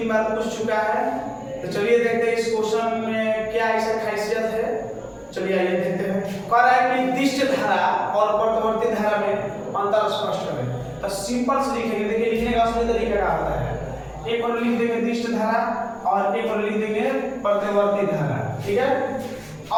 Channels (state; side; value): identical; both; correlation 1.00